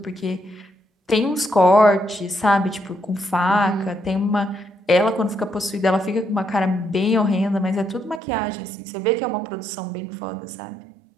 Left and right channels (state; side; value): drops out; left; at 8.2 s